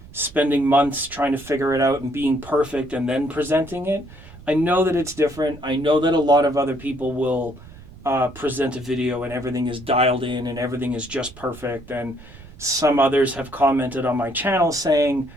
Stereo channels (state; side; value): noise; right; rumble, 19 dB below the sound